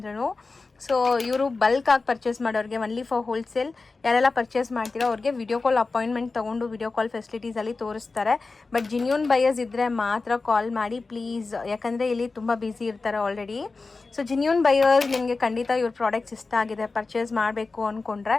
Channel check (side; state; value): right; quieter; 3.9 dB